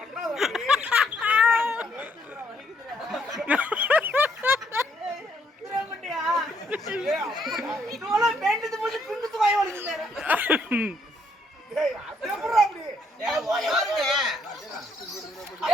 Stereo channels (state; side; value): normal; both; correlation 0.70